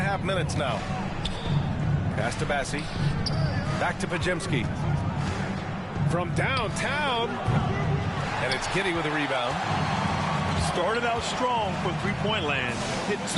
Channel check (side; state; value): both; identical; correlation 1.00